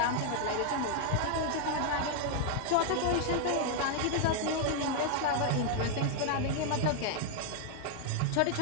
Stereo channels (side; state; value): both; different; correlation 0.00